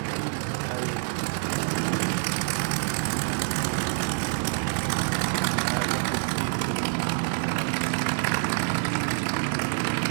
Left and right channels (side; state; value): left; silent; 58 dB below the other